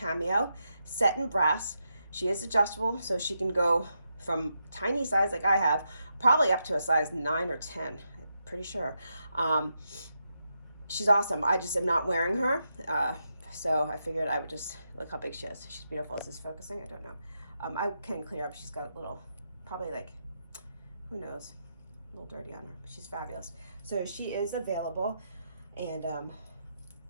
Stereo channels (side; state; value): both; inverted; correlation -0.84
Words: set in brass. She is adjustable, so she can go from tiny size like I have, probably up to a size 9 or 10. I'm pretty sure. She's awesome. I just am not wearing her. So I figured I would just look how big she is. She's beautiful. Is this focusing? I don't know. I can clear up. She's got a little, probably who knows, a little dirty on her, but she's fabulous. So she is available, and